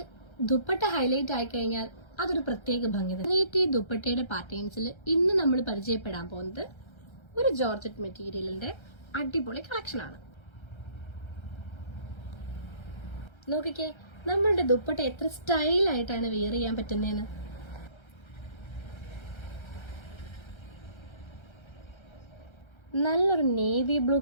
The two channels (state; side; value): late; right; 1.3 ms